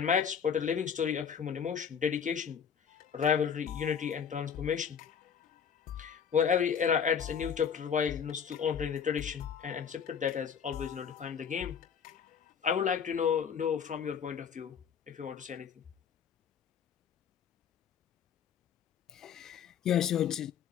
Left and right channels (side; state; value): right; quieter; 7.4 dB